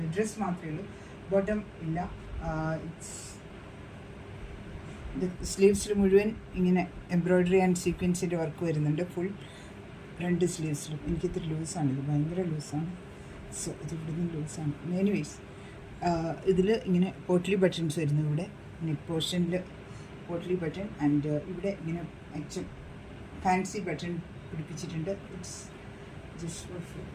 ഡ്രസ്സ് മാത്രമേ ഉള്ളൂ, ബോട്ടം ഇല്ല. ഇത് സ്ലീവ്സിൽ മുഴുവൻ ഇങ്ങനെ എംബ്രോയ്ഡറി ആൻഡ് സീക്വൻസിൻ്റെ വർക്ക് വരുന്നുണ്ട്. ഫുൾ രണ്ട് സ്ലീവ്സിലും. എനിക്കിത്ര ലൂസാണ്, ഇത് ഭയങ്കര ലൂസാണ്. സോ ഇത് ഇവിടുന്ന് ലൂസാണ്. എനിവേസ് ഇതിൽ ഇങ്ങനെ പോട്ട്ലി ബട്ടൺസ് വരുന്നു. ഇവിടെ നെക്ക് പോർഷനിൽ പോട്ട്ലി ബട്ടൺ ആൻഡ് ഇവിടെ ഇങ്ങനെ അച്ഛൻ ഫാൻസി ബട്ടൺ പിടിപ്പിച്ചിട്ടുണ്ട്. ഇറ്റ്സ് ജസ്റ്റ്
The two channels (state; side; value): identical; both; correlation 1.00